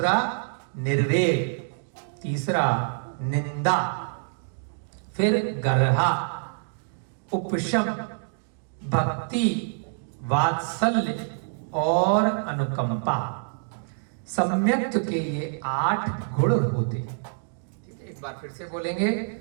निर्वेग, तीसरा निंदा, फिर गर्हा, उपशम, भक्ति, वात्सल्य और अनुकंपा। सम्यक्त के ये 8 गुण होते हैं। ठीक है, एक बार फिर से बोलेंगे,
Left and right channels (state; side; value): silent; left; digital silence